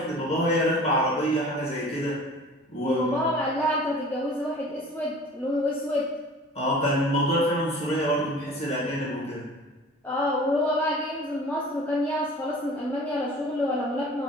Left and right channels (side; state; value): both; normal; correlation 0.44